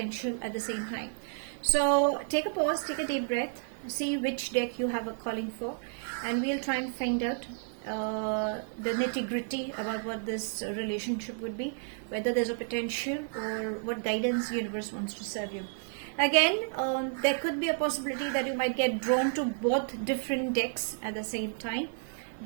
at the same time. So take a pause, take a deep breath, see which deck you have a calling for, and we'll try and find out the nitty-gritty about what this relationship would be, whether there's a potential or what guidance the universe wants to serve you. Again, there could be a possibility that you might get drawn to both different decks at the same time.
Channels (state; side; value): silent; left; digital silence